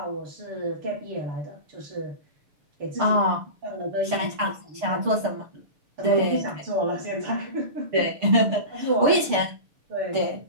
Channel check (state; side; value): late; left; 6.6 ms